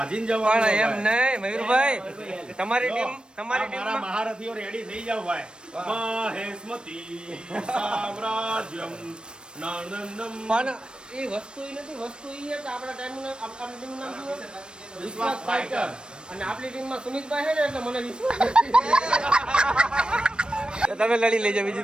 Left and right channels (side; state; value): left; late; 0.053 ms